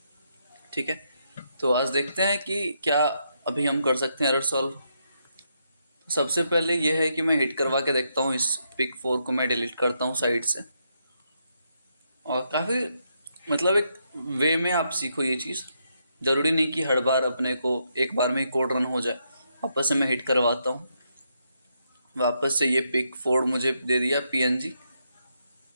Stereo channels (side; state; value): both; inverted; correlation -0.79